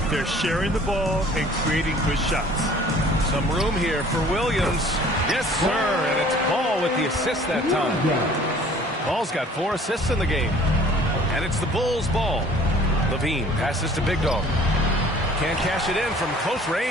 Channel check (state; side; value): normal; both; correlation 0.52